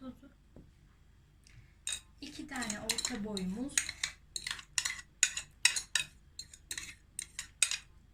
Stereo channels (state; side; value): identical; both; correlation 1.00